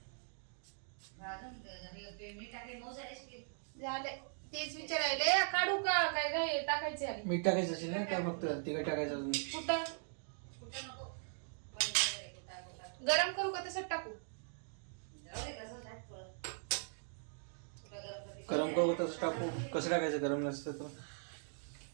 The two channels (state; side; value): silent; left; digital silence